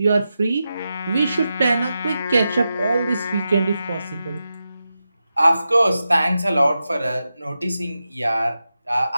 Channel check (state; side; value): inverted; both; correlation -0.90